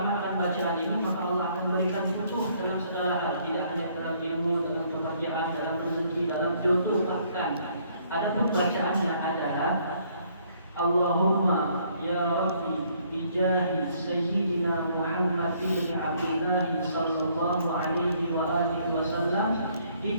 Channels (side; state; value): both; inverted; correlation -0.65